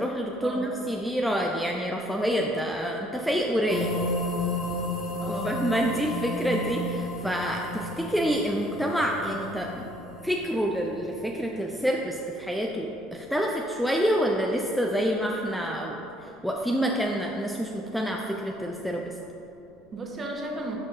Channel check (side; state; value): left; noise; rumble, 29 dB below the sound